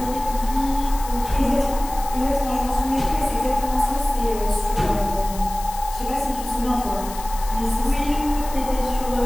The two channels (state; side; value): noise; left; hiss, 14 dB below the sound